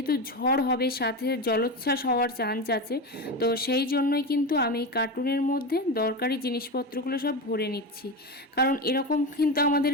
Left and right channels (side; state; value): both; normal; correlation 0.20